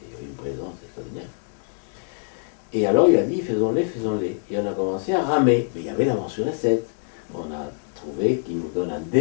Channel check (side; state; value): right; silent; 62 dB below the other